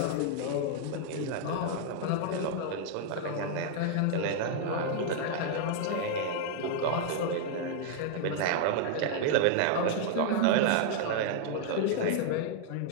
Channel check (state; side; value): different; both; correlation 0.00